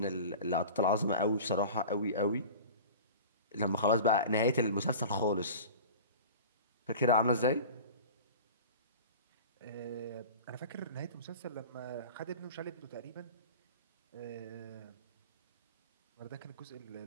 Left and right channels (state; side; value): inverted; both; correlation -0.37